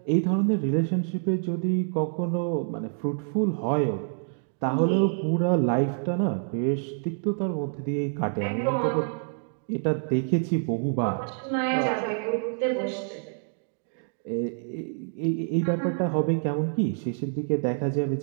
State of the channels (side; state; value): left; silent; digital silence